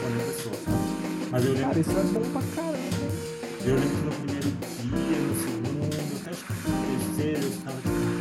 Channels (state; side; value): identical; both; correlation 1.00